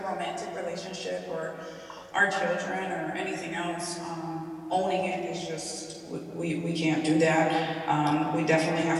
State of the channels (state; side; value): identical; both; correlation 1.00